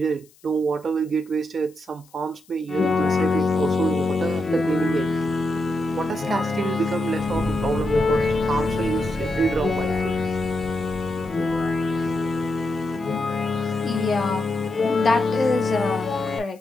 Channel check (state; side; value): noise; left; hiss, 29 dB below the sound